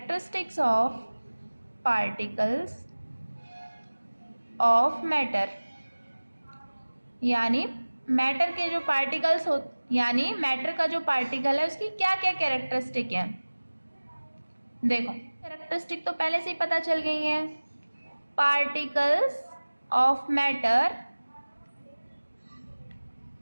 of particles of matter, यानी मैटर के जो पार्टिकल्स हो, यानी मैटर का जो पार्टिकल है उसकी क्या क्या कैरेक्टरिस्टिक है। देखो, कैरेक्टरिस्टिक तो पहले से ही पता चल गई हैं। Particles of matter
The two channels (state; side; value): inverted; both; correlation -1.00